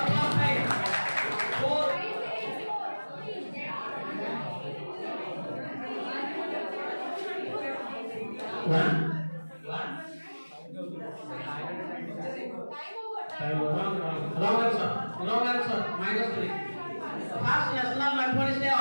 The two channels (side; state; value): both; inverted; correlation -1.00